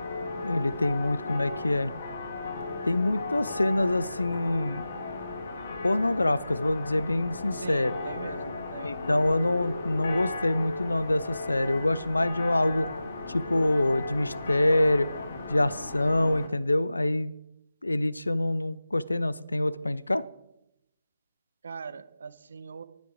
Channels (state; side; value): inverted; both; correlation -0.95